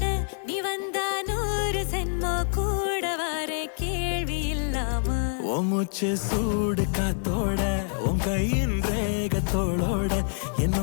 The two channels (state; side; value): silent; right; 61 dB below the other